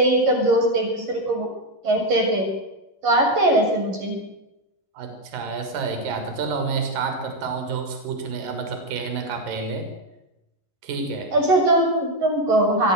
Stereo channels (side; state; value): left; late; 11 ms